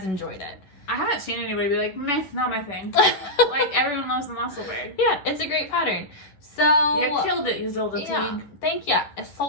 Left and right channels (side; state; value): right; late; 10 ms